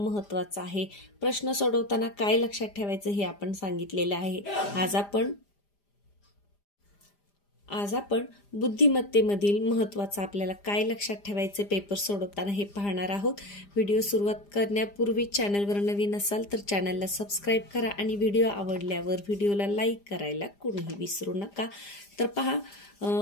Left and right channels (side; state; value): right; late; 5.0 ms